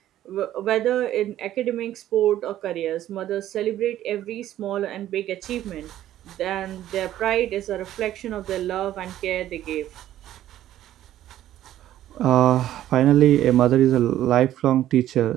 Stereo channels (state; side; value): quieter; left; 12.8 dB